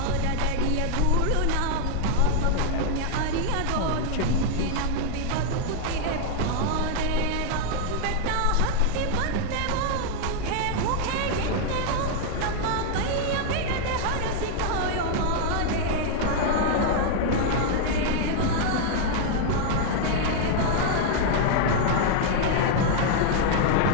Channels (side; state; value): both; different; correlation 0.00